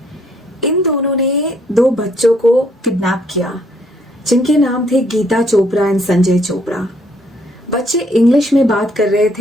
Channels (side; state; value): both; normal; correlation 0.67